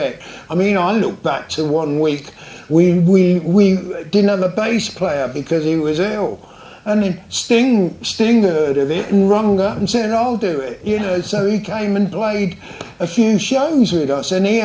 I mean, I look back to one week, we didn't have a bass player because he was ill. And then Sting heard of it and rung up and said, I'll do it, you know, so he came and played a few shows with us, and he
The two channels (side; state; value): both; identical; correlation 1.00